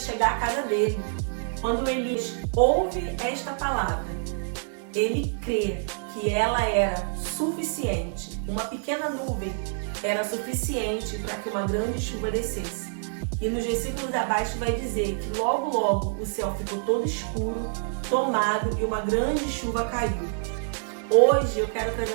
à casa dele. Quando Elias ouve esta palavra, ele crê que ela era suficiente. Uma pequena nuvem era suficiente para que uma grande chuva descesse. E nos versículos abaixo vai dizer que logo, logo o céu ficou todo escuro, tomado e uma grande chuva caiu. Hoje eu quero trazer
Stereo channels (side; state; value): left; silent; digital silence